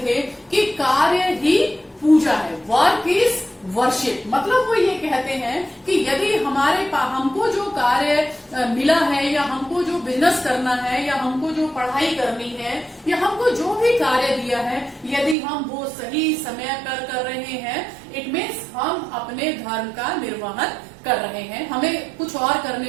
थे कि कार्य ही पूजा है, वर्क इज वर्शिप। मतलब वो ये कहते हैं कि यदि हमको जो कार्य मिला है या हमको जो बिजनेस करना है या हमको जो पढ़ाई करनी है या हमको जो भी कार्य दिया है, यदि हम वो सही समय पर कर रहे हैं, इट मीन्स हम अपने धर्म का निर्वहन कर रहे हैं, हमें कुछ और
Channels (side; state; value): left; drops out; at 15.4 s